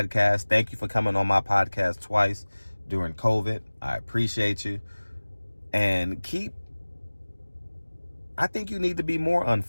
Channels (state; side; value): inverted; both; correlation -1.00